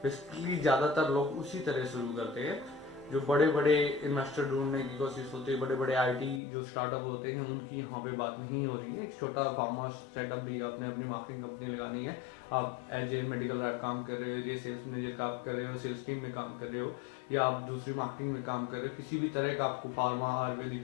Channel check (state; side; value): drops out; right; at 6.4 s